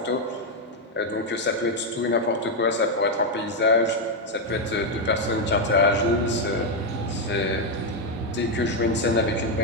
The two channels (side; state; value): both; normal; correlation 0.03